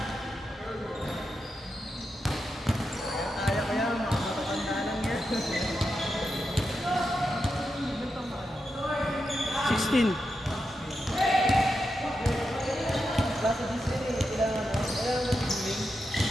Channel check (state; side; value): normal; both; correlation 0.87